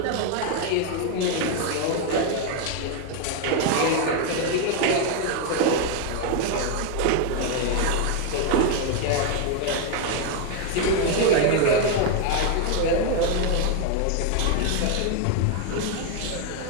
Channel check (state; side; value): different; both; correlation 0.01